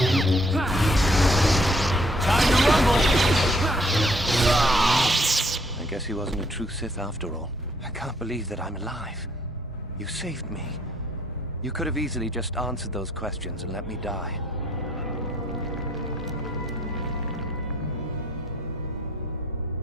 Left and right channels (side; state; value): both; normal; correlation 0.65